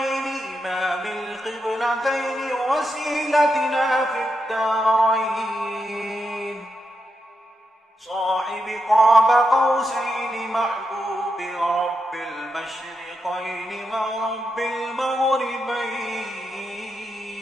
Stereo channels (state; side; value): normal; both; correlation 0.85